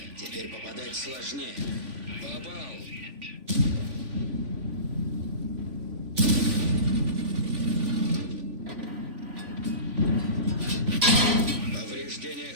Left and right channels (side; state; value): left; late; 3.5 ms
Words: Теперь попадать сложнее. Попал. Повреждение